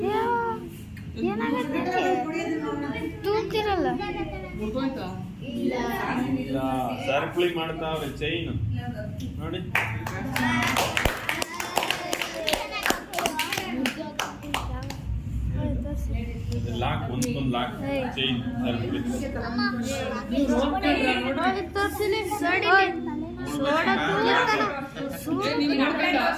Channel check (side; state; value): both; identical; correlation 1.00